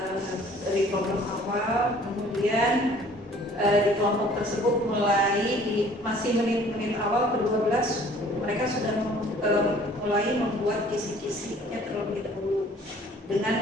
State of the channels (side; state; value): both; normal; correlation 0.54